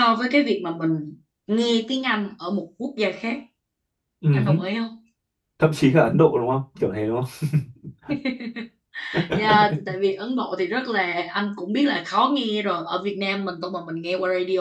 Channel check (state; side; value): identical; both; correlation 1.00